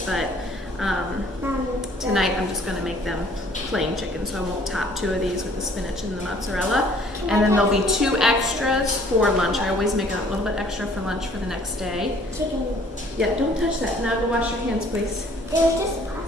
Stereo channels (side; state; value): both; normal; correlation 0.57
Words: but tonight I'm just going to make them plain chicken, so I won't top 2 of these with the spinach and the mozzarella. And then there'll be 2 extras for lunch. I always make a little bit extra for lunch for the next day. Chicken. Yeah, don't touch that. Now go wash your hands, please. It was just